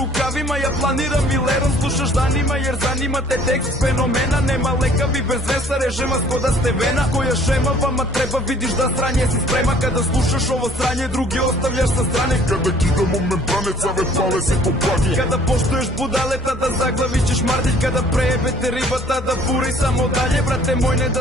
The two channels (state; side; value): normal; both; correlation 0.56